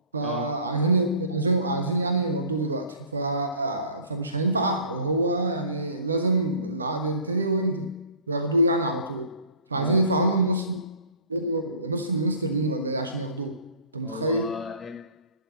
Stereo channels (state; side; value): inverted; both; correlation -0.52